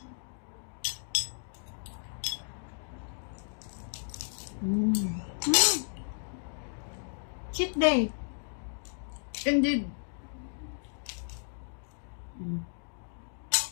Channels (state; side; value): silent; right; digital silence